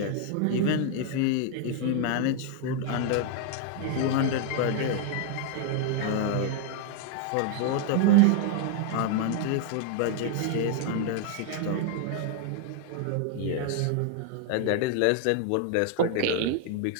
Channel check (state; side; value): different; both; correlation 0.00